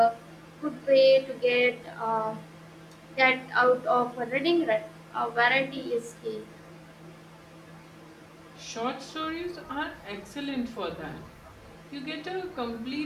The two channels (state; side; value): identical; both; correlation 1.00